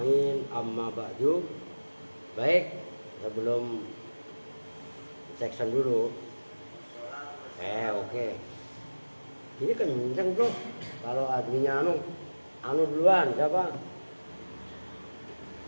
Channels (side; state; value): both; inverted; correlation -1.00